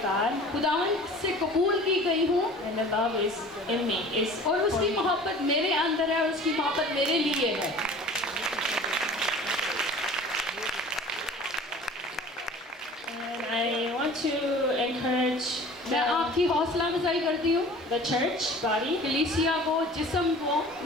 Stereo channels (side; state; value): both; normal; correlation 0.44